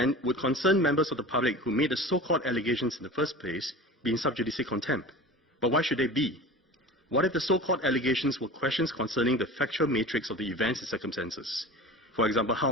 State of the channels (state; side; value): normal; both; correlation 0.36